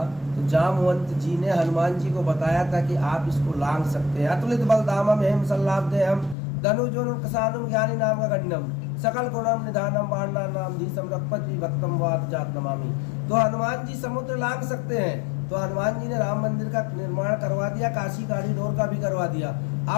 तो जामवंत जी ने हनुमान जी को बताया था कि आप इसको लांघ सकते हैं। अतुलित बलधामम हेम सल्लाभदेहम धनुजोन किसानुम ज्ञानी नाम का गण्डम सकल गुणम निधानम बाणा नाम धीसम रघुपति विभक्तम वाद जात नमामि। तो हनुमान जी समुद्र लांघ सकते हैं, तो हनुमान जी ने राम मंदिर का निर्माण करवा दिया, काशी कॉरिडोर का भी करवा दिया।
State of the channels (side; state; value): right; drops out; at 6.4 s